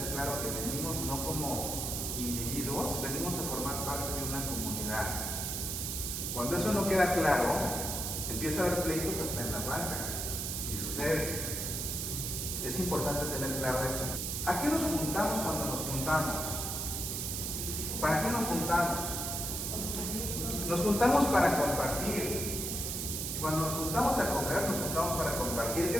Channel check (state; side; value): noise; right; hiss, 2 dB below the sound